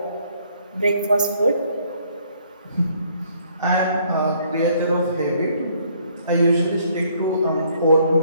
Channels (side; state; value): both; inverted; correlation -0.65